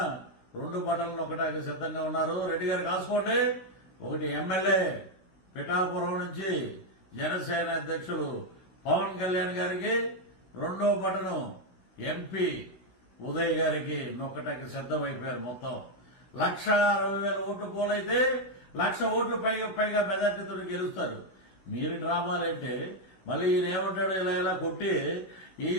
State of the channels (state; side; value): late; right; 16 ms